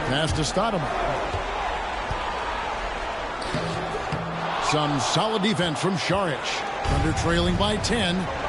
Pass to Stoudemire. Some solid defense from Šarić. Under trailing by 10.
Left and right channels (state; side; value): identical; both; correlation 1.00